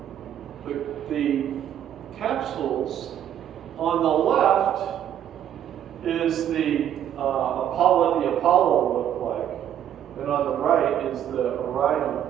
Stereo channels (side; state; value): left; quieter; 10.3 dB